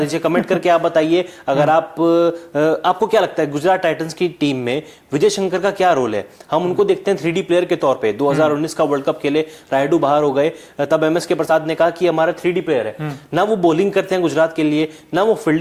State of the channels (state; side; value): identical; both; correlation 1.00